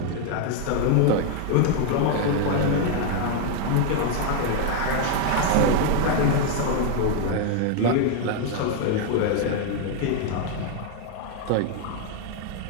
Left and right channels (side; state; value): both; different; correlation 0.00